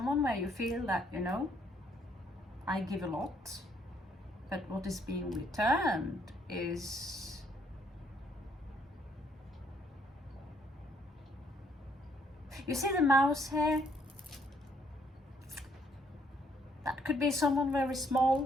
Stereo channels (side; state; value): both; normal; correlation 0.68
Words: where you feel that, I give a lot, but what is being returned is you see the mouse here? That could be someone very